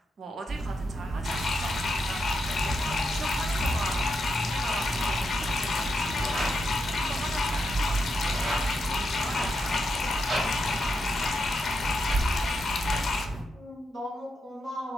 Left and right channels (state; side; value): normal; both; correlation 0.83